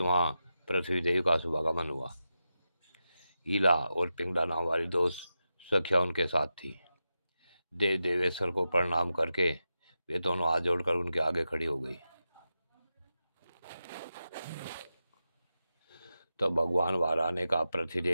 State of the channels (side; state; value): both; inverted; correlation -0.90